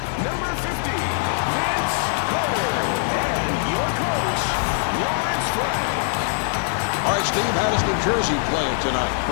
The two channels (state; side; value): silent; right; 64 dB below the other